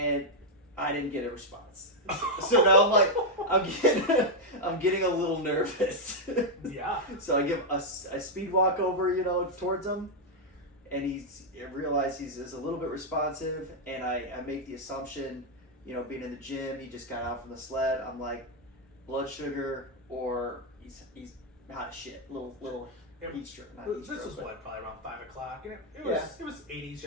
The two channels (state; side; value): normal; both; correlation -0.01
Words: I didn't get a response. So now I'm like, I'm getting a little nervous. Yeah. So I give a speed walk over, towards him, and I realize he's a little bit responsive, and I make the assumption, being in the gym, he just got out from the sled. I'm like, blood sugar, or he's hot as shit. Little heat stroke. This was probably around 5 o'clock. It was 80s